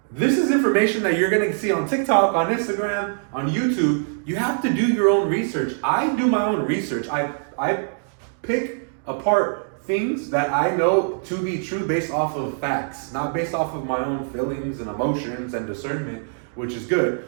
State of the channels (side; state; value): left; silent; digital silence